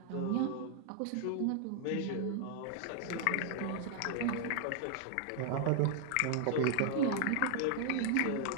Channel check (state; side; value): different; both; correlation 0.00